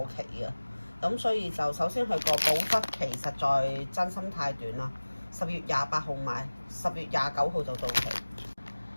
期啊。咁所以就首先佢個保質期實在真心太短啦。10月28號買，10月29號就到期。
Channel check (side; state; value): both; inverted; correlation -1.00